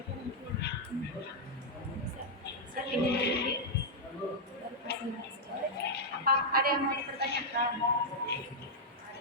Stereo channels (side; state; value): both; normal; correlation -0.04